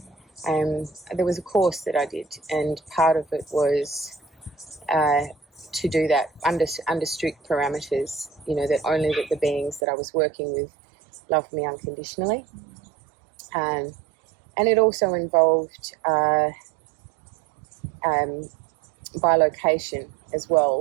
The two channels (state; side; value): drops out; left; at 9.8 s